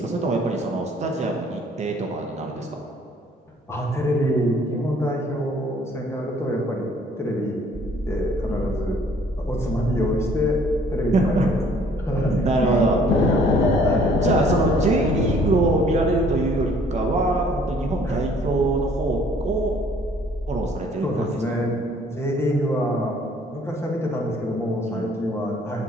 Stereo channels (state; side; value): normal; both; correlation 0.58